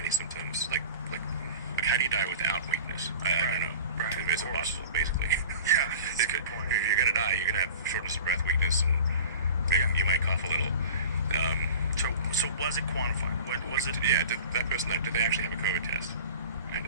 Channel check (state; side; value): inverted; both; correlation -0.38